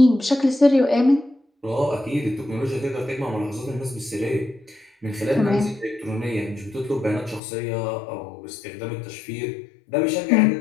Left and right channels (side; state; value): right; drops out; at 7.4 s